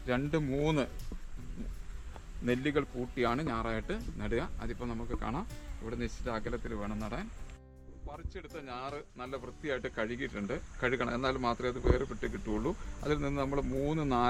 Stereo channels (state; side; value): identical; both; correlation 1.00